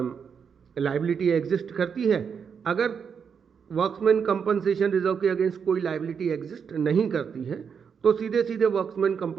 लाइबिलिटी एग्जिस्ट करती है। अगर वर्क्समैन कंपनसेशन रिजर्व के अगेंस्ट कोई लाइबिलिटी एग्जिस्ट नहीं करती है तो सीधे सीधे वर्क्समैन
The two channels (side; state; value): left; quieter; 6.7 dB